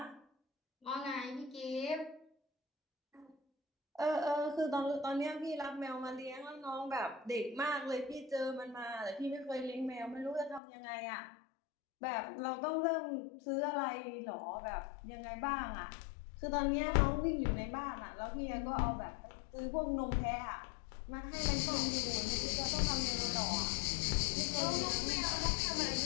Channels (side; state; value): right; drops out; at 10.6 s